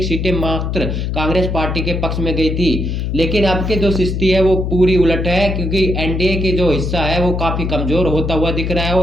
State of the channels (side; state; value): left; noise; hum, 2 dB below the sound